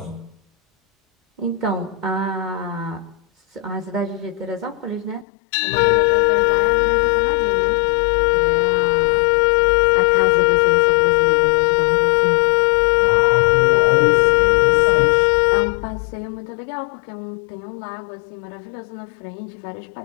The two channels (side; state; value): right; drops out; at 5.2 s